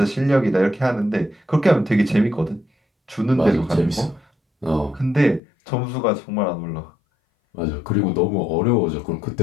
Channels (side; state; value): right; drops out; at 5.4 s